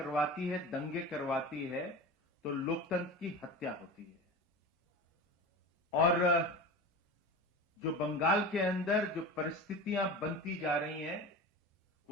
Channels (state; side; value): normal; both; correlation 0.30